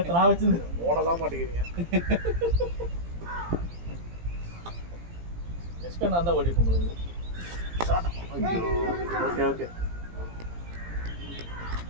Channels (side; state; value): left; late; 17 ms